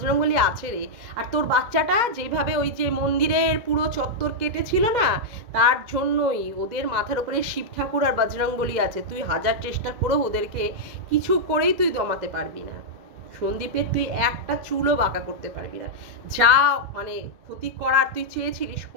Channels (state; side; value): late; left; 2.2 ms